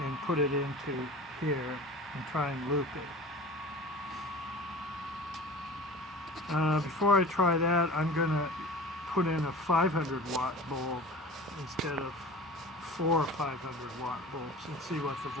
and put it into here and try and loop it. Before I try that, I'm going to put in a 500-watt bulb instead of 4 500-watt bulbs and see what the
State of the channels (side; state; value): both; normal; correlation 0.38